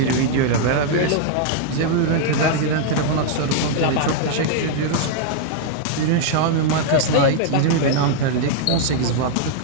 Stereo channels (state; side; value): different; both; correlation -0.01